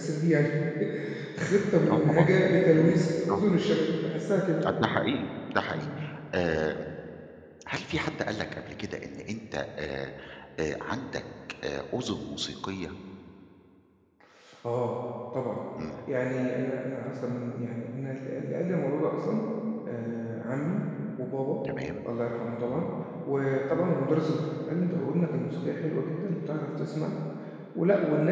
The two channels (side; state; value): both; identical; correlation 1.00